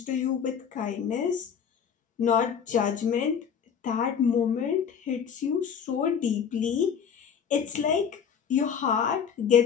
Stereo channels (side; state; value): right; quieter; 7.4 dB